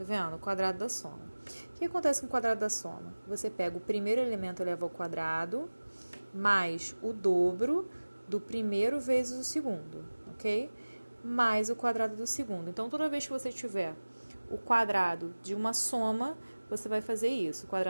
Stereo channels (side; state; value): both; inverted; correlation -1.00